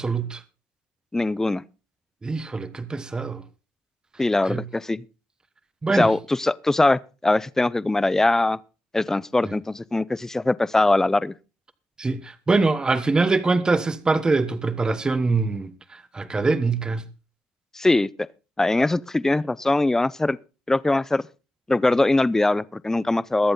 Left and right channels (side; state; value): both; normal; correlation 0.94